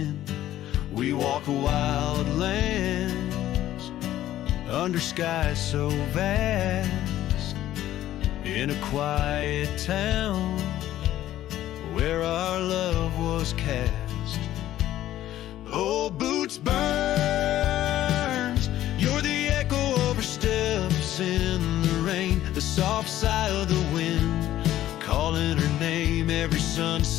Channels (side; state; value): right; quieter; 13.3 dB